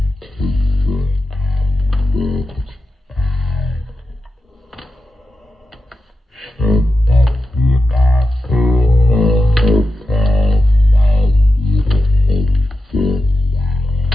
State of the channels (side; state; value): both; normal; correlation 0.89